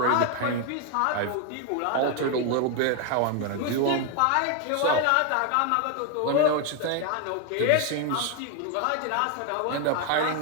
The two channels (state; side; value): different; both; correlation 0.01